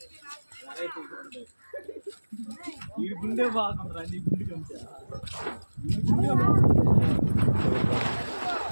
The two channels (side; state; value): both; inverted; correlation -1.00